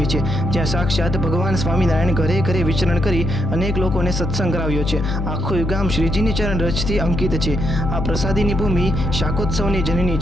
છે, જ્યાં સાક્ષાત ભગવાન સ્વામિનારાયણ ઘરે ઘરે વિચરણ કરી અનેક લોકોને સત્સંગ કરાવ્યો છે. આખું ગામ શ્રીજીની ચરણ રજથી અંકિત છે. આ પ્રસાદીની ભૂમિ શાકોત્સવની જનની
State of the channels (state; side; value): noise; left; hum, 2 dB below the sound